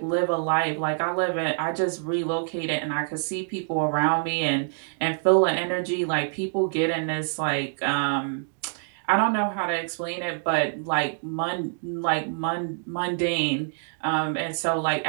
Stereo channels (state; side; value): silent; left; digital silence